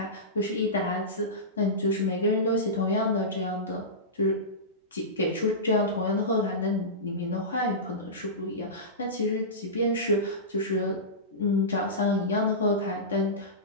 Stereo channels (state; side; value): normal; both; correlation -0.18